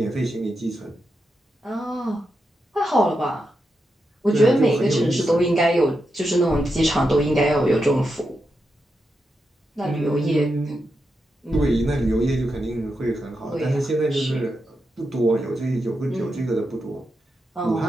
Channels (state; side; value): normal; both; correlation 0.86